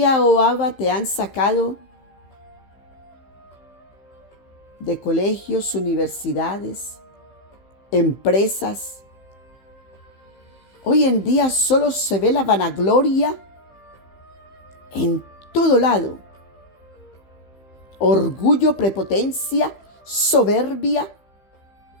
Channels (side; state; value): right; late; 15 ms